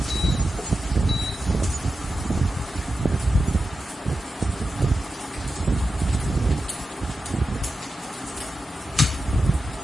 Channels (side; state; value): both; normal; correlation 0.91